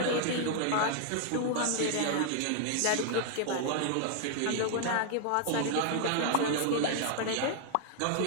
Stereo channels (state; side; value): different; both; correlation 0.00